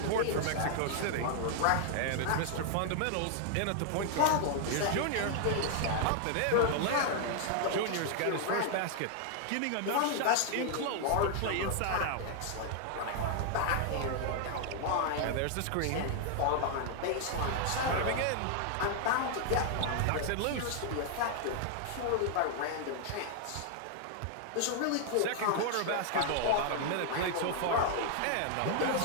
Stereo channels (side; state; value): both; different; correlation 0.00